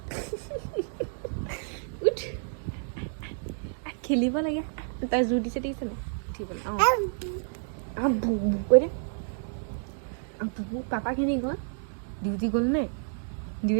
উঠ খেলিব লাগে তাই জোৰ দিছে দেখিছে নাই উঠিবলৈ কৈ দে পাপাখিনি গ'ল ডিউটি গ'ল নে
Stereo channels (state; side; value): silent; left; digital silence